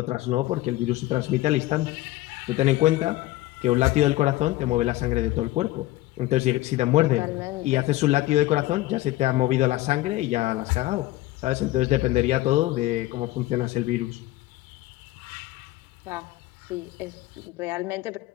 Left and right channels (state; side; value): quieter; right; 16.8 dB